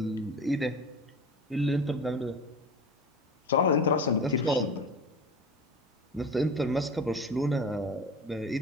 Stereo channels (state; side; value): normal; both; correlation 0.33